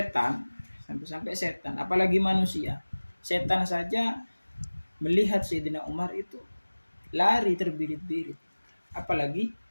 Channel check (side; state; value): both; inverted; correlation -1.00